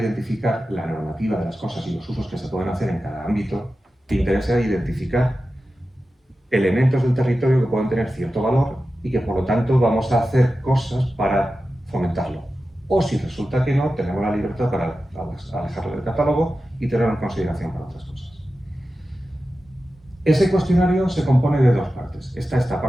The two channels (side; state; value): both; normal; correlation 0.93